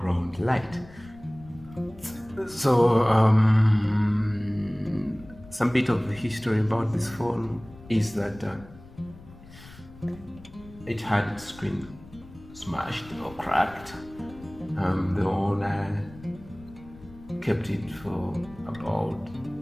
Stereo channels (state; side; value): noise; left; rumble, 20 dB below the sound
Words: light. So some bit of the history about this phone is that it had its screen smashed or cracked. The owner kept it for about